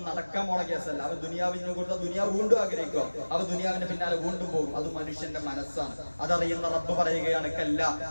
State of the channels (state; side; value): inverted; both; correlation -1.00